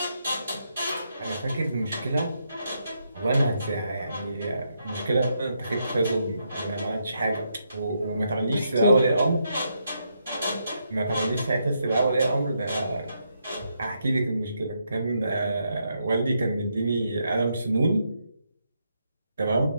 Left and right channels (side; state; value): both; inverted; correlation -0.80